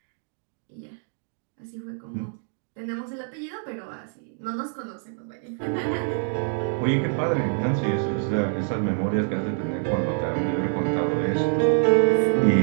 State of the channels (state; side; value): silent; left; 58 dB below the other